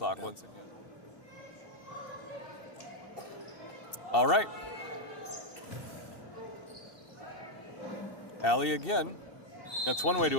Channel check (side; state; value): right; late; 2.7 ms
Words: once again. All right. Alley again. That's one way